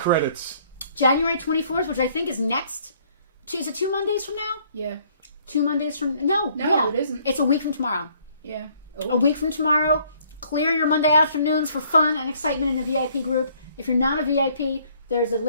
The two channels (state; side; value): inverted; both; correlation -0.62